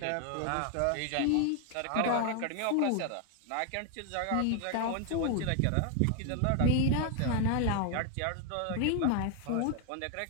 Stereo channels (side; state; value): both; different; correlation 0.01